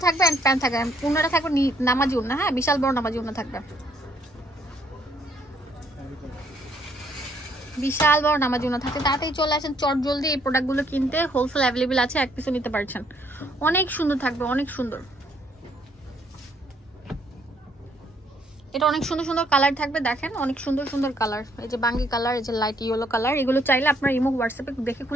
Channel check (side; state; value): both; normal; correlation 0.68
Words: থাকবে, প্যান্ট থাকবে। উন্নাটা থাকবে নামাজি উন্না। হ্যাঁ, বিশাল বড় নামাজি উন্না থাকবে, বিশাল বড় নামাজি উন্না থাকবে। তাড়াতাড়ি চলে আসেন চট জলদি এই প্রোডাক্টগুলো কিনতে। হোলসেল অ্যাভেলেবেল আছে, এক পিসও নিতে পারছেন। অনেক সুন্দর থাকবে, অনেক সুন্দর। এটা অনেক সুন্দর সুন্দর কালার থাকবে, দেখেন অনেক সুন্দর সুন্দর কালার। এই যে বাঙ্গি কালার, এই যে লাইট ইয়েলো কালার, এগুলো চাইলে আপনার ইমো হোয়াটসঅ্যাপে দেখে